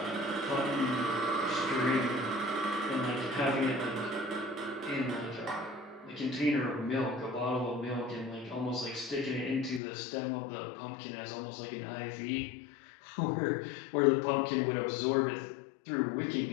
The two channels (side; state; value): right; drops out; at 9.8 s